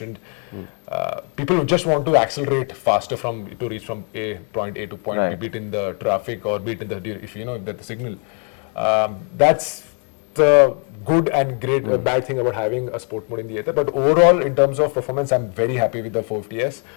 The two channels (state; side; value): quieter; right; 38.3 dB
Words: people who just want to accelerate faster to reach from point A to point B, be it in the traffic or be it in if the signal. That's the good and bad thing about having a sport mode in the Ather. But overall, in terms of performance, I'm very happy with the 450S.